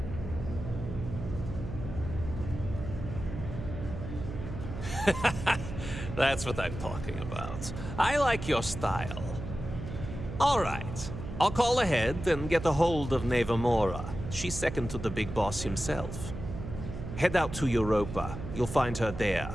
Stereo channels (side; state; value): right; noise; hum, 8 dB below the sound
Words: That's what I'm talking about. I like your style. All right. I'll call ahead and get a hold of Nevamora. She's second to the big boss himself. Head out to Europa. You'll find her there.